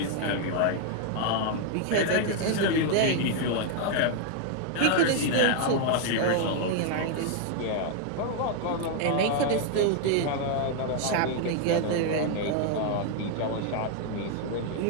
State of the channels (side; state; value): both; different; correlation 0.00